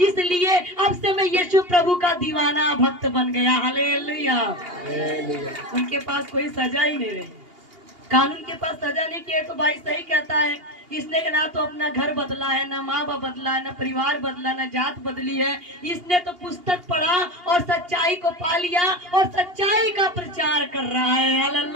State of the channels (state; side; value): late; left; 2.8 ms